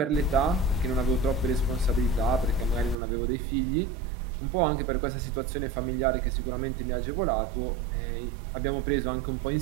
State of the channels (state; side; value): drops out; left; at 3.0 s